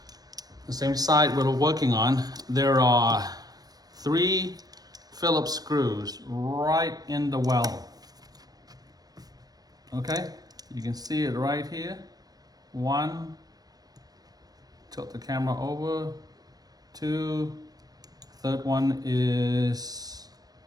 the same side we're working on, there are 3 Phillips screws right in the well. Okay, you can see it right here. 1, tilt the camera over. 2, third one is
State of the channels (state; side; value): late; left; 0.19 ms